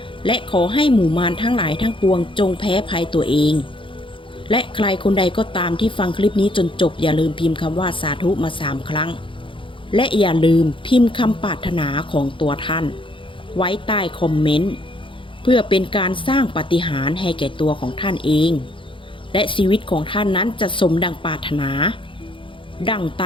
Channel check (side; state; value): right; late; 0.25 ms